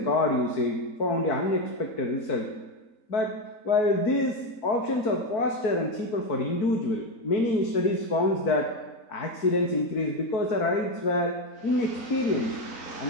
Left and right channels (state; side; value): late; right; 4.5 ms